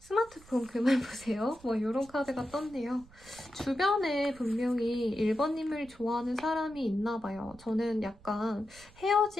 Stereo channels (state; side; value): noise; right; rumble, 24 dB below the sound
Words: 그만 보세요. 뭐 이런 카드가 떴네요. 주변에 분명히 1번님을 좋아하는 사람이 있나 봐요. 저는 약간